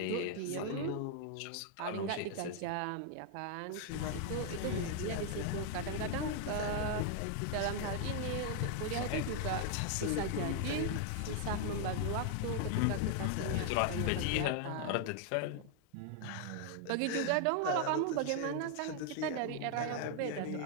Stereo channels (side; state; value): both; different; correlation 0.00